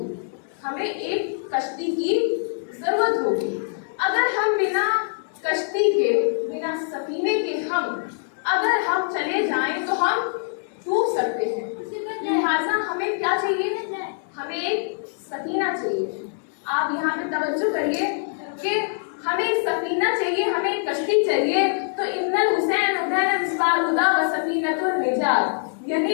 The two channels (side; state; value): right; silent; digital silence